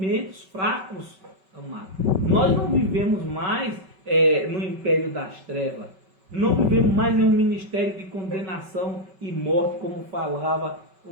fracos, amado. Nós não vivemos mais no império das trevas. Não vivemos mais em um ministério de condenação e morte, como falava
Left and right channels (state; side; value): late; left; 5.3 ms